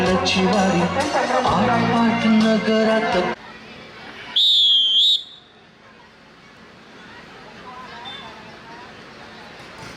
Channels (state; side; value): identical; both; correlation 1.00